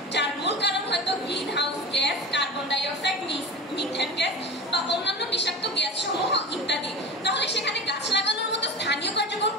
যার মূল কারণ হয়তো green house gas, carbon die oxide, methane gas বা অন্যান্য বিষাক্ত গ্যাস সমূহ ইত্যাদি, তাহলে সেখানে গাছ লাগানোর মতো স্থানীয় কার্যক্রম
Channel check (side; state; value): both; normal; correlation 0.30